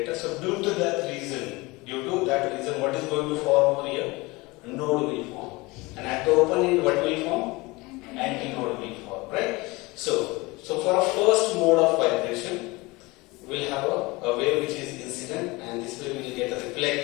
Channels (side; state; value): right; quieter; 23.3 dB